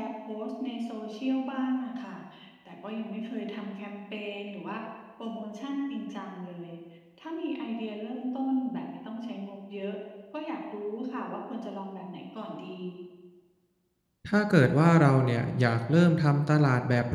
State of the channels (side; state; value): both; identical; correlation 1.00